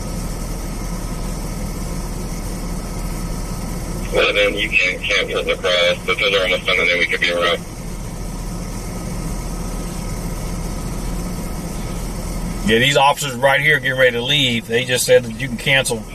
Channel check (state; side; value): identical; both; correlation 1.00